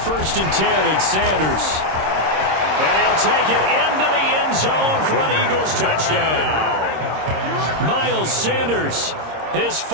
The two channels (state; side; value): late; left; 26 ms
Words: and 10, it's Sanders. And he'll take it into the end zone for an Eagles touchdown. Miles Sanders, his